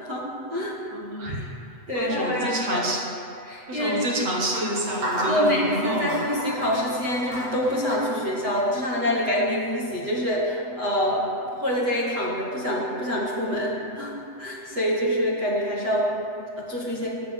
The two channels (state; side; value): late; left; 8.0 ms